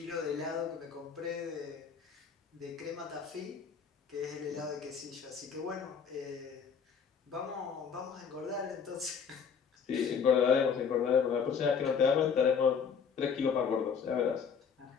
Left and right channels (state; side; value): quieter; right; 6.5 dB